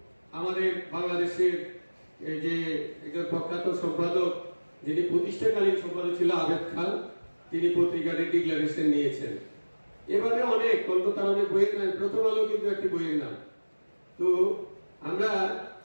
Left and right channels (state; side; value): inverted; both; correlation -1.00